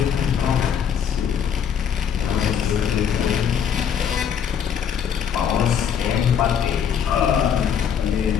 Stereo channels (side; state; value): right; quieter; 7.9 dB